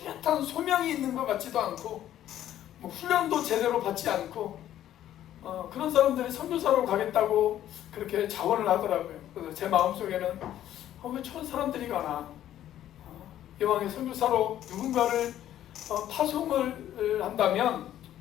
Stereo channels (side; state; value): right; quieter; 12.0 dB